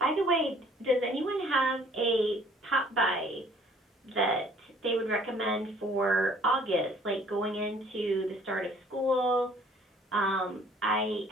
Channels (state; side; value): normal; both; correlation 0.57